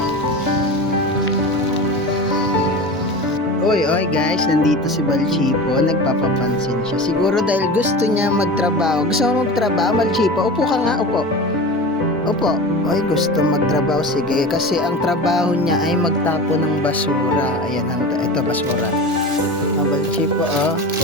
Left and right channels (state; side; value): normal; both; correlation 0.31